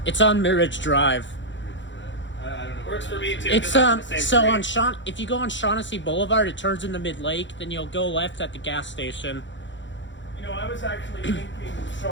It's on Mirage Drive. I don't know. Works for me too. It's 'cause I'm on the same so street. on if you go on Shaughnessy Boulevard, it turns into Mid Lake. Then you'll go left at the gas station. You know, I was actually thinking,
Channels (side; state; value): right; late; 0.54 ms